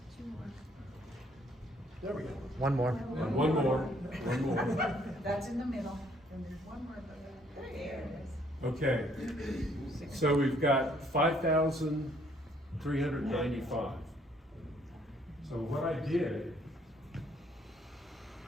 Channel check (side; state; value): both; normal; correlation 0.65